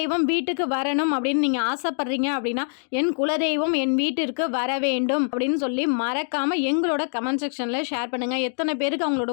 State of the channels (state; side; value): silent; right; digital silence